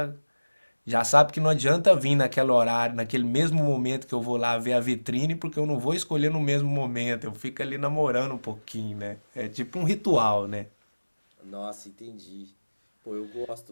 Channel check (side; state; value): both; inverted; correlation -1.00